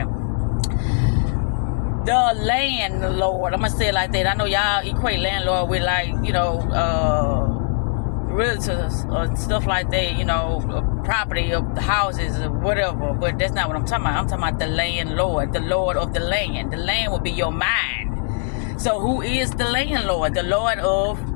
the landlord, I'm gonna say it like that. I know y'all equate landlord with, like, you know, realtors or stuff like that, you know, property of houses or whatever, but that's not what I'm talking about. I'm talking about the landlord, the lord of the land. The land will be your mind. So who is the landlord? The lord of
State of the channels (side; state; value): right; silent; digital silence